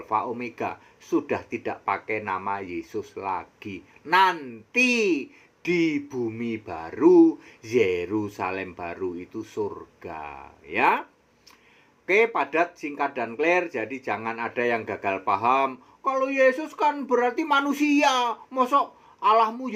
Omega. Sudah tidak pakai nama Yesus lagi. Nanti di bumi baru, Yerusalem baru, itu surga, ya. Oke, padat, singkat, dan clear. Jadi jangan ada yang gagal paham. Kalau Yesus kan berarti manusia. Mosok Allahmu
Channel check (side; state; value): both; identical; correlation 1.00